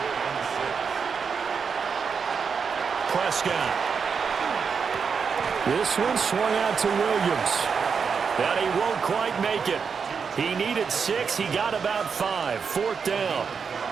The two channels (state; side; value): quieter; left; 6.0 dB